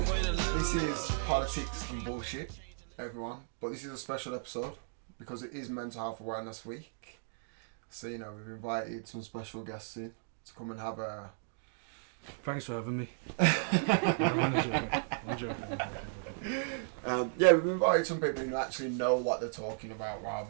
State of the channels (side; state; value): left; silent; digital silence